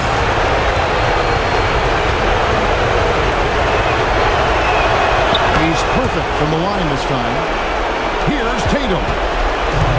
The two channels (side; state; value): both; identical; correlation 1.00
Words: He's perfect from the line this time. Here's Tatum.